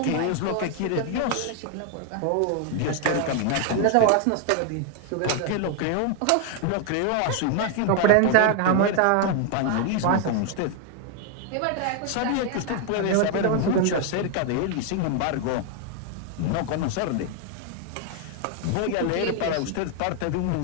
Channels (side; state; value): both; different; correlation 0.00